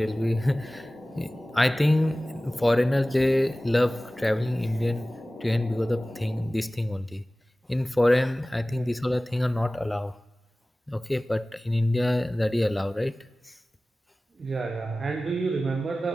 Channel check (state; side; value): normal; both; correlation 0.97